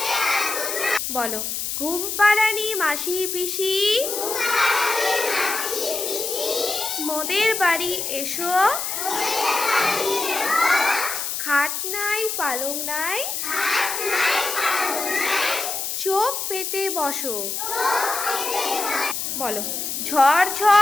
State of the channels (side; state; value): left; noise; hiss, 3 dB below the sound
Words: বলো। ঘুম পাড়ানি মাসি পিসি, মোদের বাড়ি এসো, খাট নাই পালং নাই, চোখ পেতে বসো। বলো। ঝড়